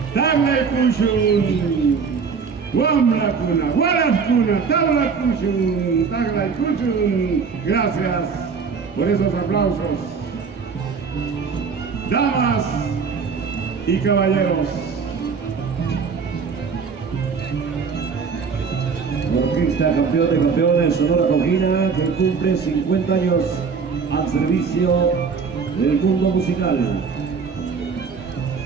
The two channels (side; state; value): left; quieter; 5.6 dB